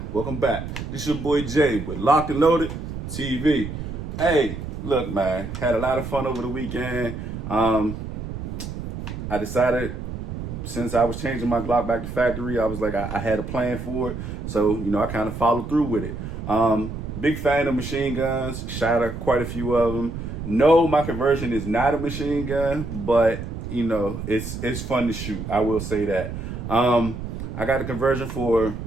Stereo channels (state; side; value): noise; right; rumble, 7 dB below the sound